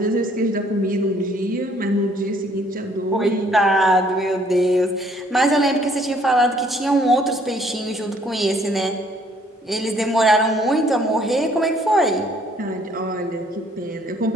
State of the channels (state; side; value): normal; both; correlation 0.62